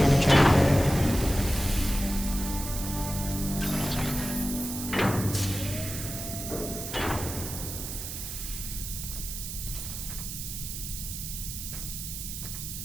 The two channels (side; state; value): right; noise; hiss, 7 dB below the sound